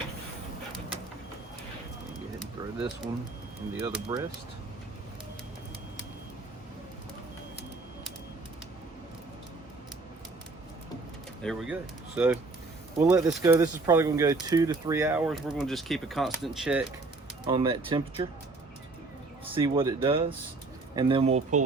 Go ahead and throw this one in the other breast. There we go. So we'll let this go. This is probably going to go 2 to 3 hours. We're going to just keep a constant check on that temperature, see what it does, and then we'll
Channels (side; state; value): left; quieter; 3.5 dB